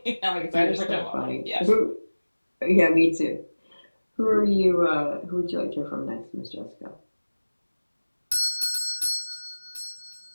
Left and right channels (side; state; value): both; inverted; correlation -1.00